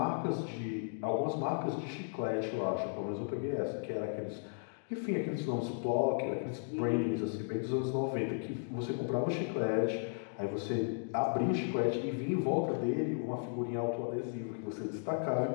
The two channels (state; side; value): silent; right; digital silence